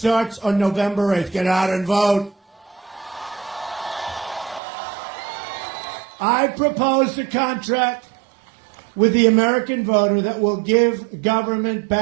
on November 8th. Get out and vote. I proposed a contract with the American voter that will give government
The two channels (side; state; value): left; drops out; at 4.6 s